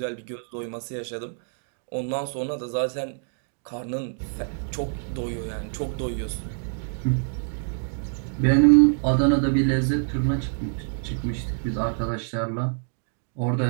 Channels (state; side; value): silent; left; digital silence